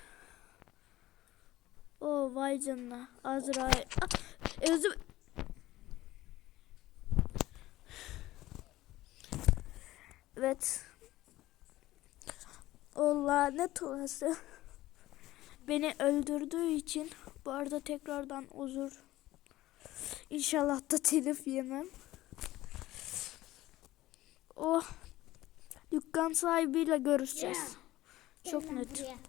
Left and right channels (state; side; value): quieter; right; 16.4 dB